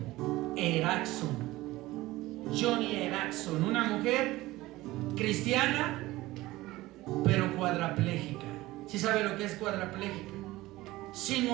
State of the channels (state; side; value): quieter; left; 18.2 dB